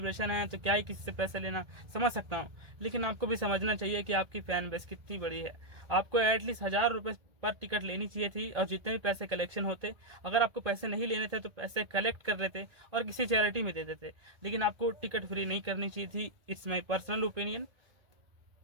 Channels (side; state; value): left; late; 1.8 ms